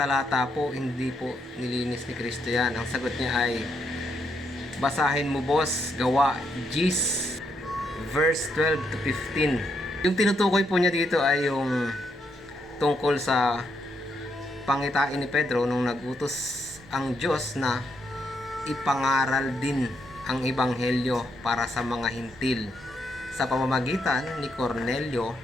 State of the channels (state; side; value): normal; both; correlation 0.77